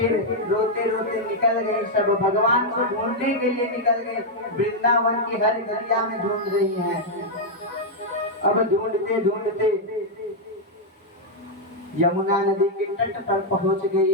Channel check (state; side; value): normal; both; correlation -0.02